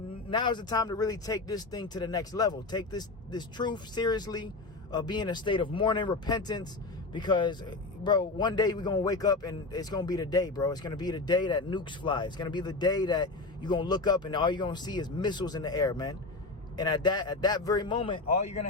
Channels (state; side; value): quieter; right; 3.4 dB